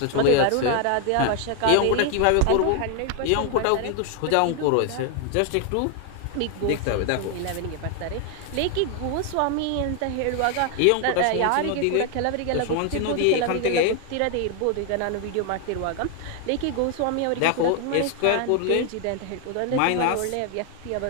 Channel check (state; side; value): different; both; correlation 0.01